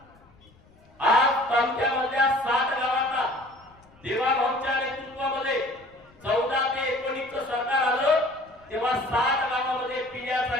आज तालुक्यामधल्या 60 गावांना देवाभाऊंच्या नेतृत्वामध्ये 14 ते 19 सरकार आलं तेव्हा 60 गावामध्ये पिण्याचं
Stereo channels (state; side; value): noise; left; rumble, 28 dB below the sound